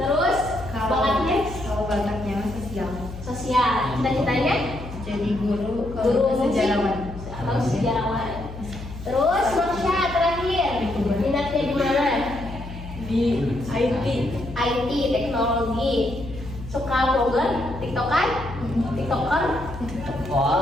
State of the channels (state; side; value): noise; left; hum, 12 dB below the sound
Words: bakatnya? Kalau bakatnya mah sosial. Sosial. Cita-citanya? Jadi guru Guru musik sejarawan. atau sejarawan. Terus Marsha terakhir, minatnya di mana? Di IT. IT, teknologi. Suka vlogger, tiktokan, tiktoker.